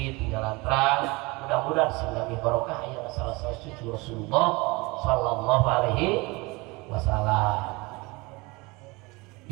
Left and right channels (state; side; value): quieter; left; 24.9 dB